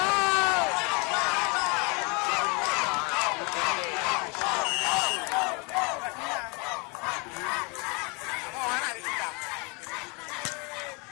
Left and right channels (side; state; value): right; quieter; 31.0 dB